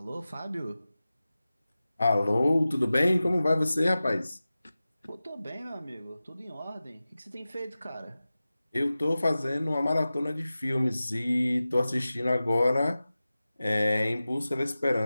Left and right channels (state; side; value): inverted; both; correlation -0.96